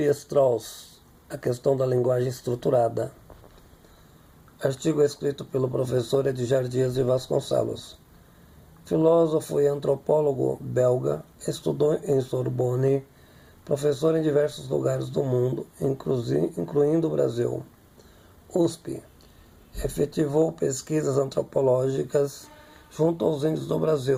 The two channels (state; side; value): identical; both; correlation 1.00